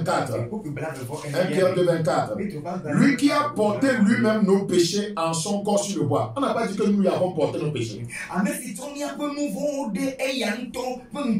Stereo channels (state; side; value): identical; both; correlation 1.00